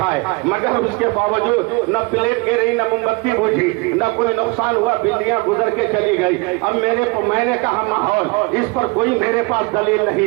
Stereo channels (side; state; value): left; quieter; 27.0 dB